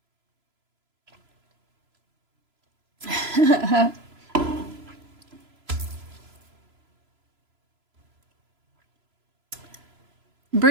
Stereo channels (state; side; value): late; left; 3.0 ms